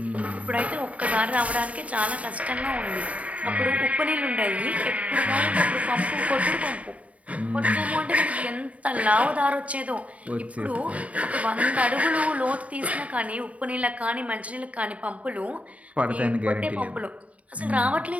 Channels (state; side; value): late; left; 0.067 ms